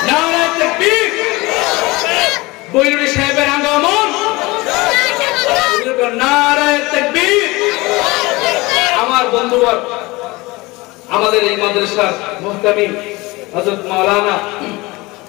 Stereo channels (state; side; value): quieter; right; 22.5 dB